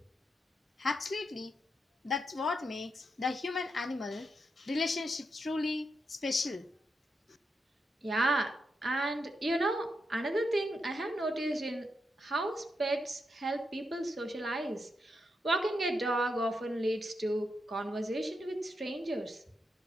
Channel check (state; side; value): normal; both; correlation 0.84